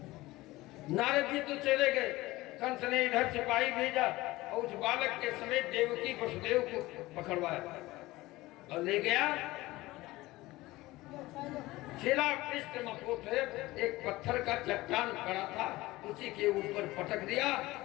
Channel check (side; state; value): right; quieter; 19.1 dB